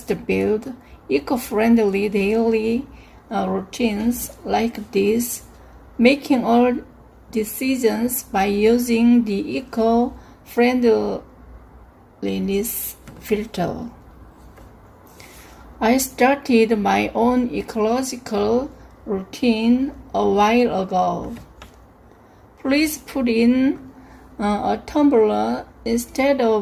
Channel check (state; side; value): identical; both; correlation 1.00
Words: build eco-friendly daily routines like this, making all decisions by using the eco-friendliness filter. I started my own ecological routine a while ago. Please put in a tumbler instead